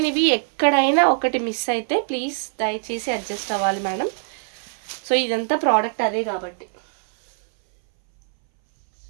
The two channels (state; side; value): silent; left; 61 dB below the other